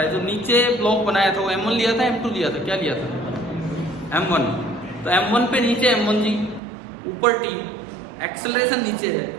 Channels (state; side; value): drops out; left; at 6.6 s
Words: जो नीचे ब्लॉक बनाया था वो M1 लिया था, M2 लिया था, क्या लिया था? M1। तो M1 पे नीचे M1G, ऊपर T, एक्सेलरेशन नीचे है,